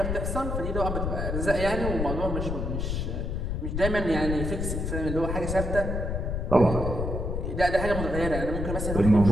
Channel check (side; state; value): left; noise; rumble, 2 dB below the sound